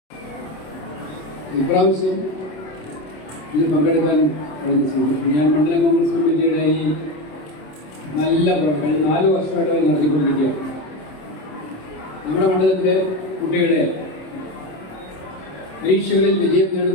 ഇപ്രാവശ്യം ഇതിൽ പങ്കെടുക്കാൻ ഞാൻ മണ്ഡലം കോൺഗ്രസ് കമ്മിറ്റിയുടെ ഈ നല്ല പ്രവർത്തനം 4 വർഷമായിട്ട് നടത്തിക്കൊണ്ടിരിക്കുകയാണ്. നമ്മുടെ മണ്ഡലത്തിലെ കുട്ടികളെ, പരീക്ഷകളിൽ വിജയം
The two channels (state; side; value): late; right; 27 ms